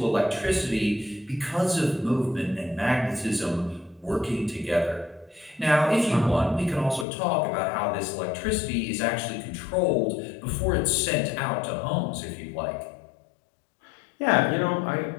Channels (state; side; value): drops out; right; at 7.1 s